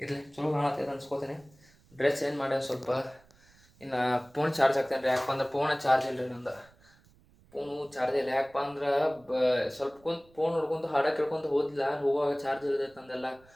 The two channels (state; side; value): noise; right; rumble, 29 dB below the sound